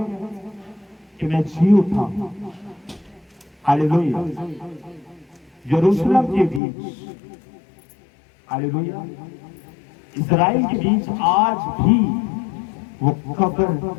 कि मैं जी उठा। हालेलुया। यरूशलेम के बीच, हालेलुया, इस्राएल के बीच आज भी वो कब्र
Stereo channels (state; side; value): drops out; right; at 6.6 s